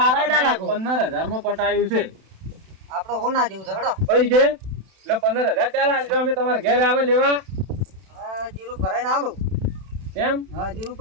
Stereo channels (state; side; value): late; left; 31 ms